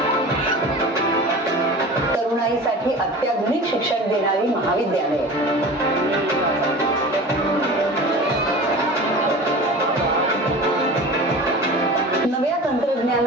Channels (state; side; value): normal; both; correlation 0.36